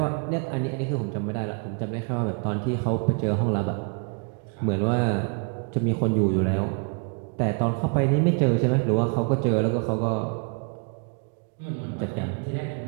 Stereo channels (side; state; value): left; quieter; 38.0 dB